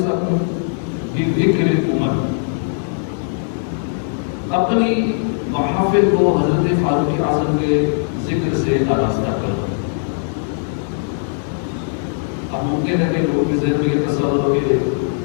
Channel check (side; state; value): right; silent; digital silence